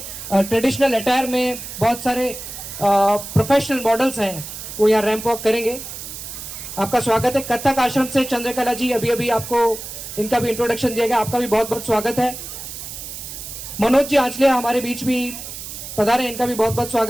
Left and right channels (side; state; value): right; noise; hiss, 10 dB below the sound